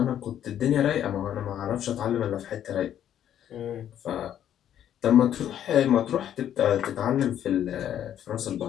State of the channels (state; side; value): quieter; right; 10.5 dB